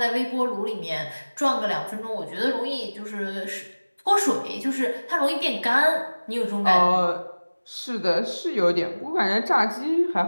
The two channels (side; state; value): both; inverted; correlation -1.00